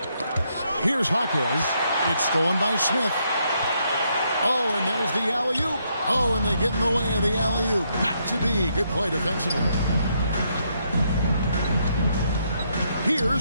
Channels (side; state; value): both; inverted; correlation -0.75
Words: Here's Jaquez. It's stolen by Smith. Oh, and there's the alley-oop. Oh, and they get in the way of the alley-oop. Not to be. Good play defensively.